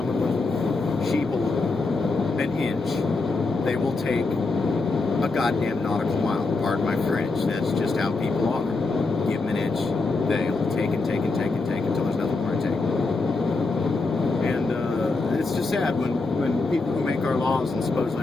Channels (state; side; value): quieter; right; 3.6 dB